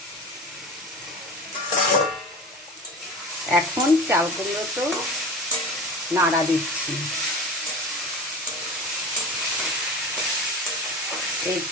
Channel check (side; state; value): both; normal; correlation 0.33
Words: এখন চাল কুমড়ো তো নাড়া দিচ্ছি।